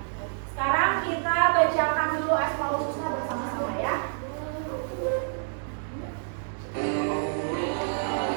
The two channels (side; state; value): left; silent; digital silence